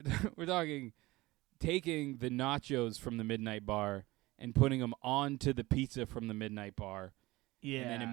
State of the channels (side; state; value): left; quieter; 20.0 dB